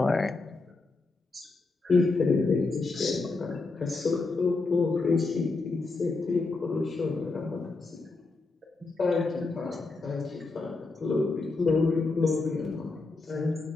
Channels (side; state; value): right; quieter; 3.6 dB